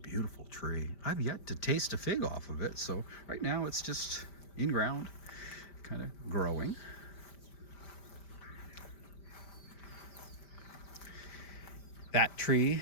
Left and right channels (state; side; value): late; right; 5.1 ms